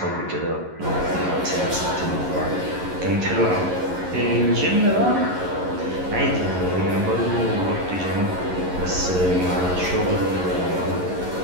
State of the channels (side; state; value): left; late; 11 ms